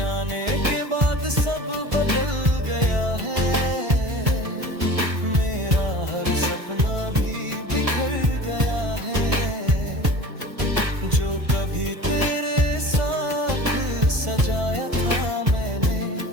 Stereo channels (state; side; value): late; left; 1.5 ms